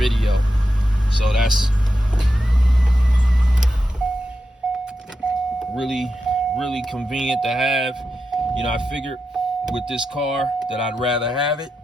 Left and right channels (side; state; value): both; normal; correlation 0.88